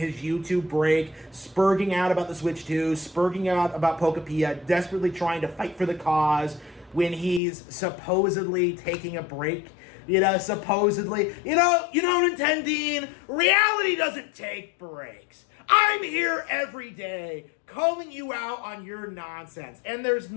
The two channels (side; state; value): right; drops out; at 7.4 s